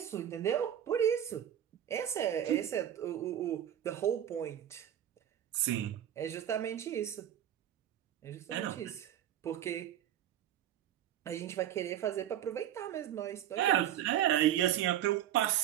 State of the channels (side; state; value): left; quieter; 11.0 dB